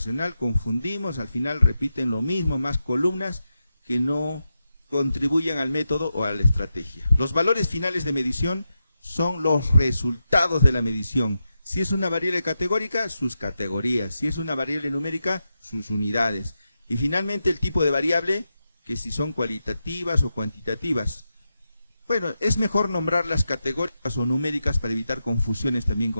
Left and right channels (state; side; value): inverted; both; correlation -0.88